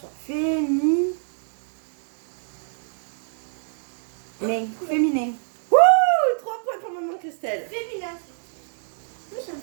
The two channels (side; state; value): left; silent; digital silence